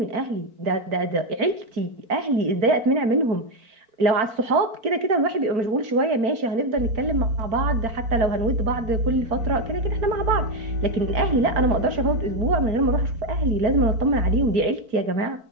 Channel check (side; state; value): left; late; 4.5 ms